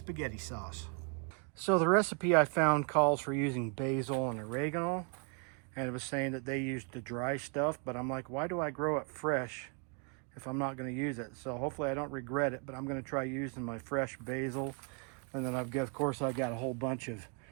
sauce. So the recipe I found calls for using basil and oregano, and it was saying that they used the dry stuff, but I'm like, why do I grow it fresh if I'm not going to use it? So hopefully I don't regret it, but I'm going to try using my fresh basil. And then of course I got a whole bunch of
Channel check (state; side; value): quieter; left; 36.3 dB